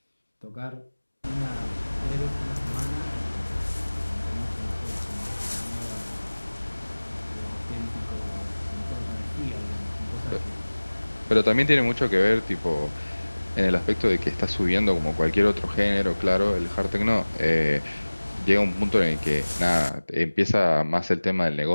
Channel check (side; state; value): both; inverted; correlation -1.00